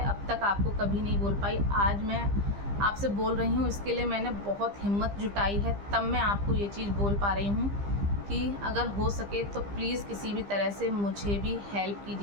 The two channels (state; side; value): late; left; 15 ms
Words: अब तक आपको कभी नहीं बोल पाई। आज मैं आपसे बोल रही हूँ, इसके लिए मैंने बहुत हिम्मत जुटाई है, तब मैं आपको ये चीज़ बोल पा रही हूँ कि अगर हो सके तो प्लीज़ किसी भी तरह से मुझे भी हेल्प